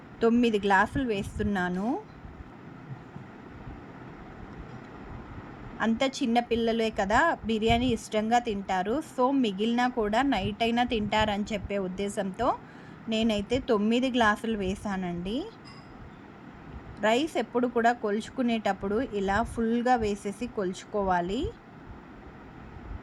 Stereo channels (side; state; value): both; identical; correlation 1.00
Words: 9 గ్లాసులు వేస్తున్నాను. అంత చిన్న పిల్లలే కదా బిర్యానీ ఇష్టంగా తింటారు. సో మిగిలిన కూడా నైట్ అయినా తింటారని చెప్పే ఉద్దేశంతో నేనైతే 9 గ్లాసులు వేసానండి. రైస్ ఎప్పుడు కూడా కొలుచుకునేటప్పుడు ఇలా ఫుల్గా వేసేసి కొలుచుకోవాలి.